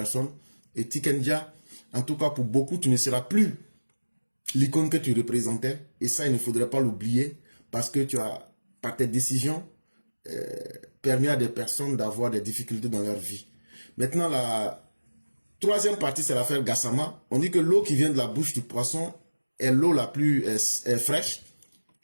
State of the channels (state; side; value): inverted; both; correlation -1.00